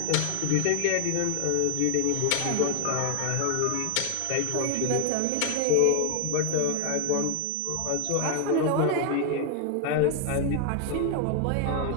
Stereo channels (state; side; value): different; both; correlation 0.01